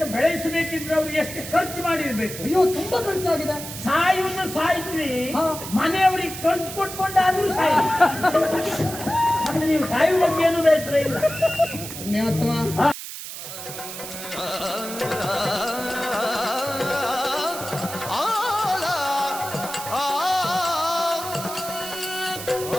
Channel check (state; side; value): noise; right; hiss, 9 dB below the sound